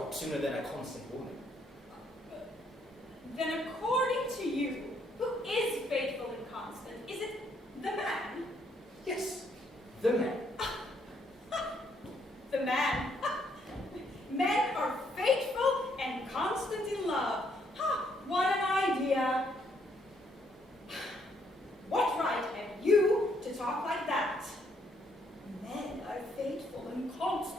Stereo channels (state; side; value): normal; both; correlation 0.71